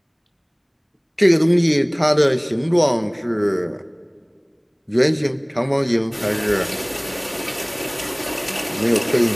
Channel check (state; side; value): identical; both; correlation 1.00